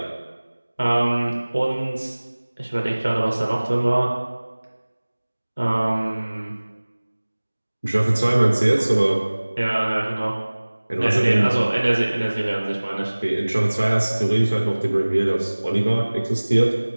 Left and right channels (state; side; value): inverted; both; correlation -1.00